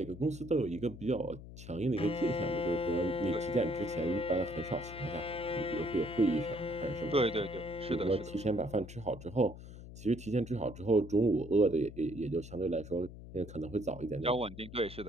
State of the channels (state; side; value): noise; left; hum, 14 dB below the sound